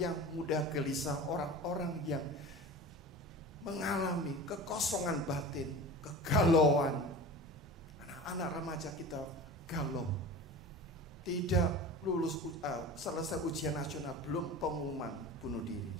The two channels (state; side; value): normal; both; correlation 0.34